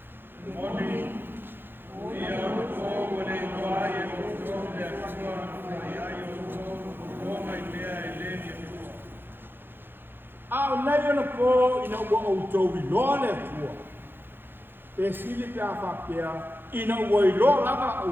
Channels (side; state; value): left; late; 0.10 ms